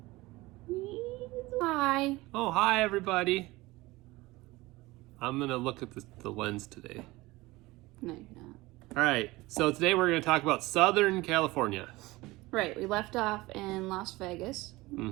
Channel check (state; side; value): quieter; left; 20.5 dB